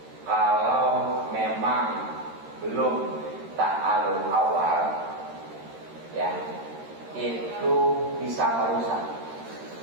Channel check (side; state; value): left; late; 13 ms